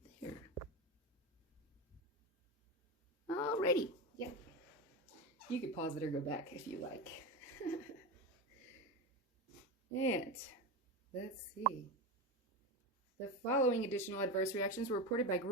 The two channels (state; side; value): normal; both; correlation 0.19